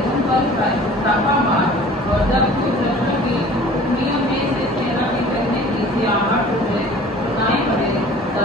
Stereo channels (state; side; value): normal; both; correlation 0.46